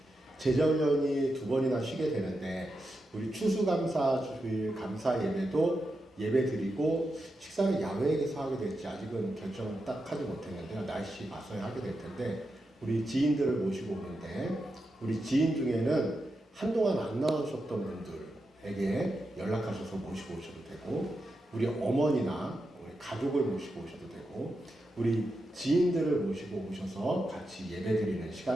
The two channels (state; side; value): normal; both; correlation 0.87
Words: 제자훈련이 2번이나 쉬게 되는데, 우리 추수감사 주일 감사 예배도 예배드리고, 식사를 야외에서 하게 될지 아직은 결정을 딱 하지 못했는데요. 날씨 봐서야 하게 될 텐데, 우리 지인들을 모시고 오는데, 우리 지인 중에는 한동안 안 나오셨던 분들에게 연락하셔서 모시고 오셔도 되고, 우리 어머니나 우리 가족을 모시고 오셔도 되고, 우리 지인들을 모시고 오셔서 같이 예배드리는